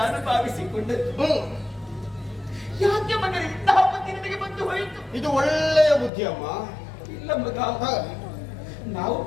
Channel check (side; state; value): right; drops out; at 6.1 s